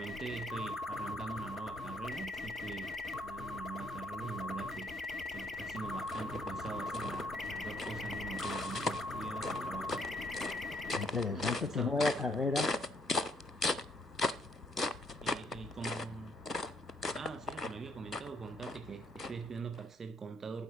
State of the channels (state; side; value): normal; both; correlation 0.69